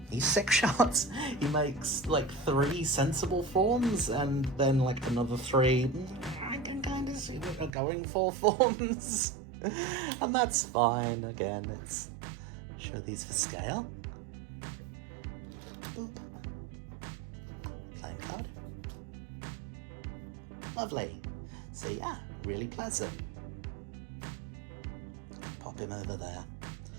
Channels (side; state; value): left; drops out; at 7.7 s